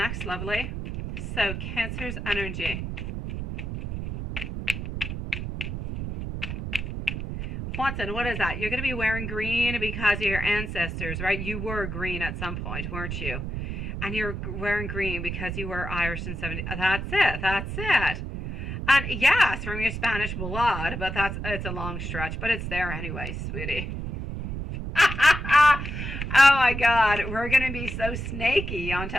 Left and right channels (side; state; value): right; noise; rumble, 5 dB below the sound